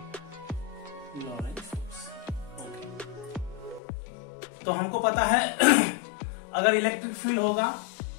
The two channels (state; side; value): drops out; right; at 3.8 s